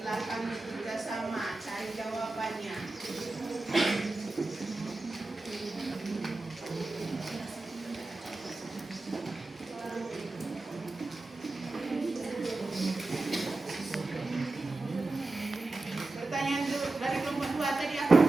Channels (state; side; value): quieter; left; 3.1 dB